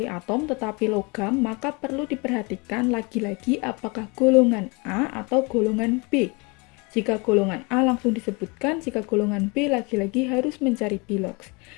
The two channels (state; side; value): quieter; right; 29.1 dB